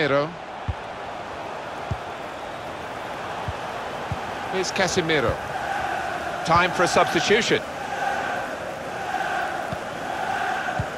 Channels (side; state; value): both; identical; correlation 1.00